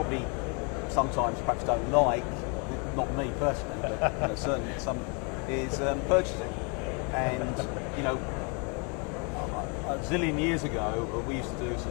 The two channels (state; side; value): quieter; right; 34.5 dB